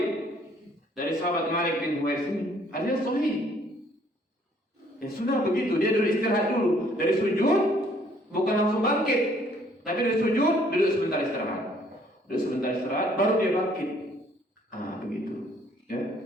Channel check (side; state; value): both; normal; correlation 0.62